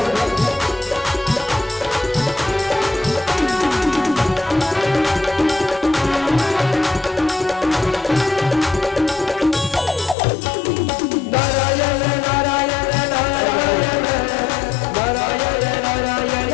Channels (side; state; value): right; drops out; at 10.2 s